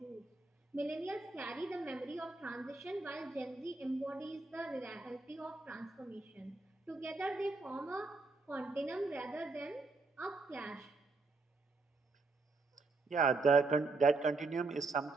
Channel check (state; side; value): quieter; left; 3.7 dB